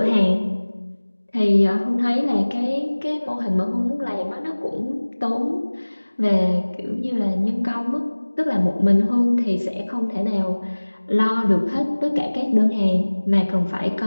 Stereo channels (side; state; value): both; inverted; correlation -1.00